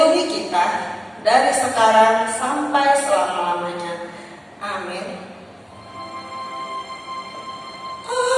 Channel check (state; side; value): identical; both; correlation 1.00